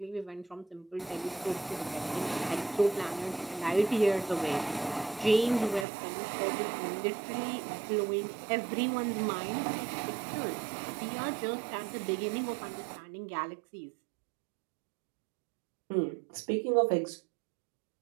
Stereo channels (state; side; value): drops out; left; at 5.9 s